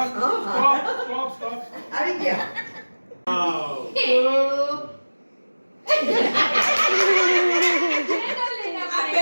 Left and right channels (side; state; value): both; inverted; correlation -1.00